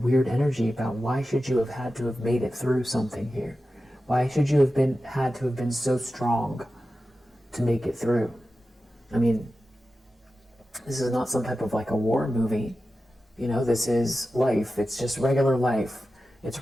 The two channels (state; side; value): normal; both; correlation 0.93